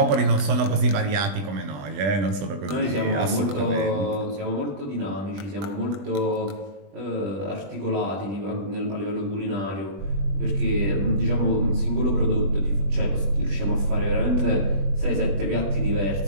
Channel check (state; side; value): late; left; 20 ms